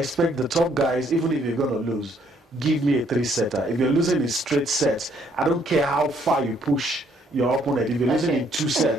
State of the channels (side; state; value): both; normal; correlation 0.67